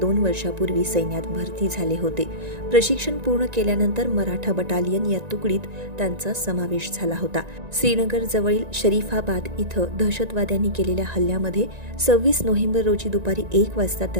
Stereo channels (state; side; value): late; left; 1.9 ms